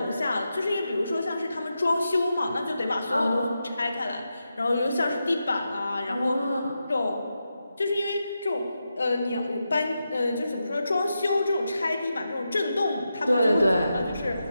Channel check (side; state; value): both; inverted; correlation -0.88